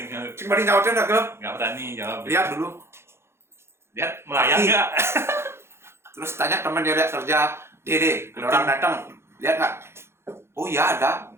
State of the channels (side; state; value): left; late; 0.12 ms